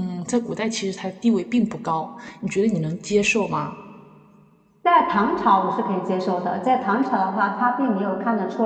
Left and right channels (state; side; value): identical; both; correlation 1.00